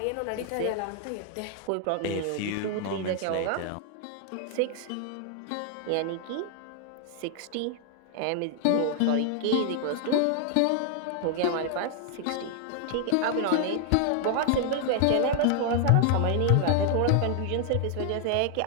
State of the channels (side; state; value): both; different; correlation 0.00